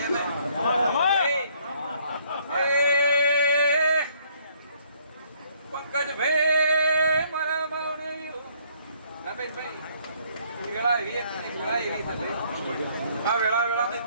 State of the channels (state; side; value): inverted; both; correlation -0.65